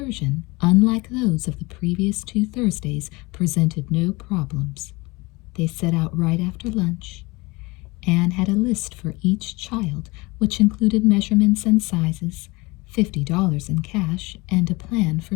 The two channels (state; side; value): quieter; right; 24.1 dB